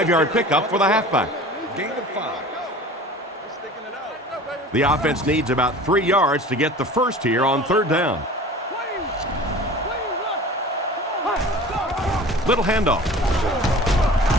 pickup for the halfback. The offense needs about 3 yards to get the first here on 3rd down. Little handoff.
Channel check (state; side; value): normal; both; correlation 0.41